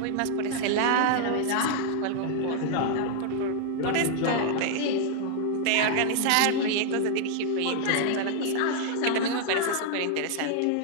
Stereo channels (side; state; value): both; different; correlation 0.00